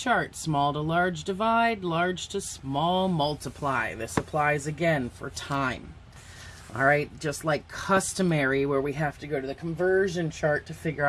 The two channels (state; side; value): identical; both; correlation 1.00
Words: small to large divide, large to small multiply. This applies again for time. All right, just like customary where we have to go to the conversion chart to figure